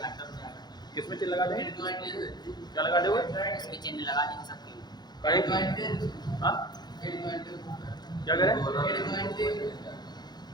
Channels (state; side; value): late; right; 0.20 ms